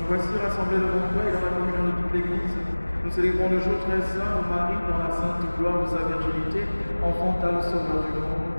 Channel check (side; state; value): both; inverted; correlation -1.00